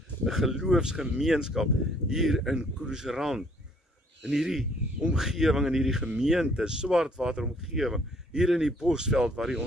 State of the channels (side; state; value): both; normal; correlation 0.62